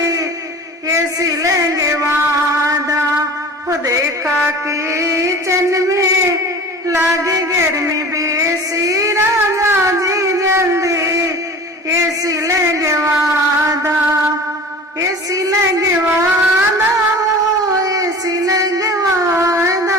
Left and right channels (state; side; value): normal; both; correlation 0.39